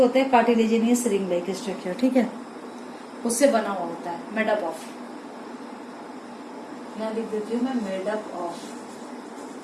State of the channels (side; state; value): both; identical; correlation 1.00